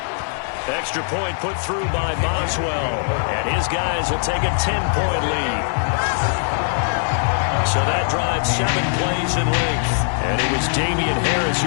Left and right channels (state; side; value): silent; right; digital silence